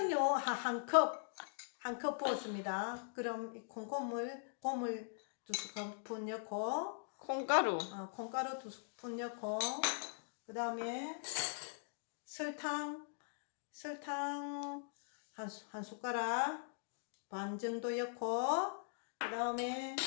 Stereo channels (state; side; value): silent; right; digital silence